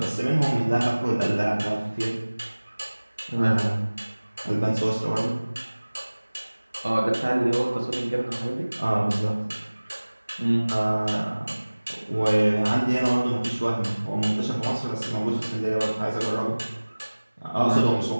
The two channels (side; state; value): both; inverted; correlation -1.00